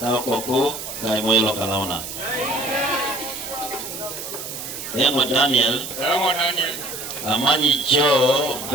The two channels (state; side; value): noise; right; hiss, 8 dB below the sound